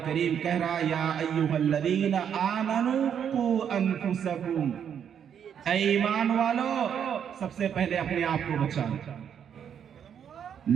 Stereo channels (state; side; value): quieter; left; 8.4 dB